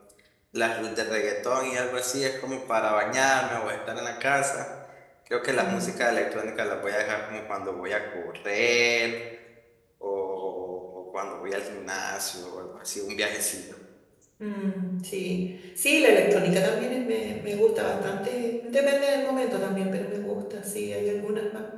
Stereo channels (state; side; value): identical; both; correlation 1.00